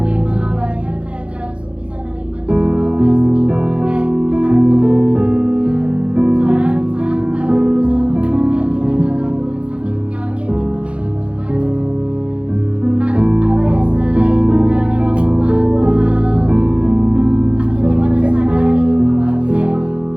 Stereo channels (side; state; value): left; late; 0.060 ms